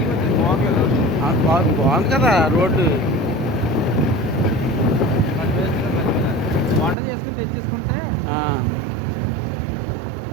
వచ్చింది. బాగుంది. బాగుంది కదా రోడ్డు. వంట చేసుకుని తెచ్చేసుకుంటే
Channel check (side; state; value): left; drops out; at 7.0 s